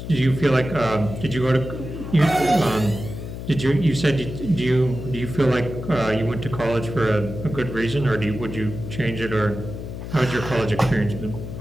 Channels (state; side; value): noise; left; hum, 9 dB below the sound